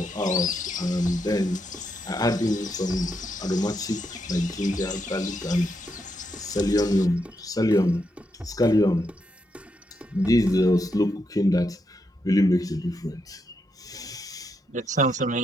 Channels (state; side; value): normal; both; correlation 0.81